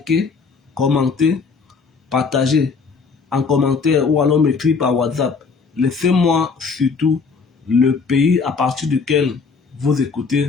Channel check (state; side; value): quieter; right; 5.0 dB